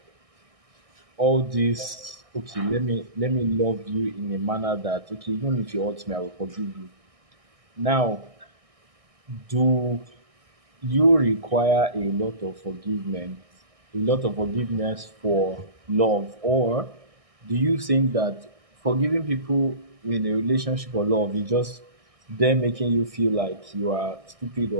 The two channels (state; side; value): late; left; 1.6 ms